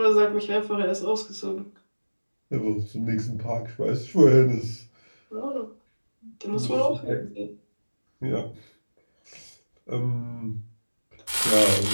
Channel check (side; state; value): both; inverted; correlation -1.00